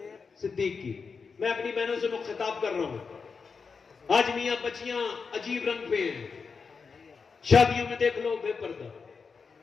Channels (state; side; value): quieter; right; 5.2 dB